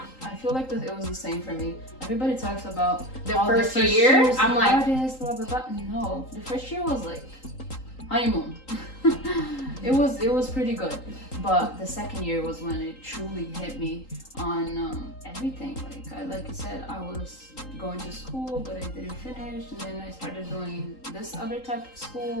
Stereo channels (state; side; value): late; right; 3.8 ms